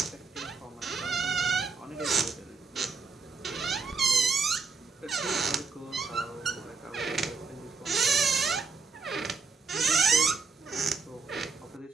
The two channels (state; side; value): quieter; left; 4.7 dB